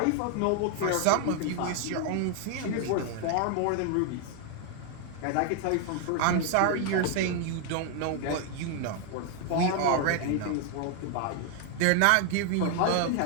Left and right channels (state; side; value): different; both; correlation 0.00